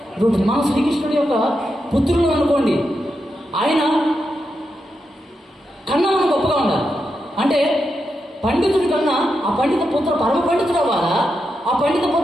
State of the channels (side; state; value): both; normal; correlation 0.86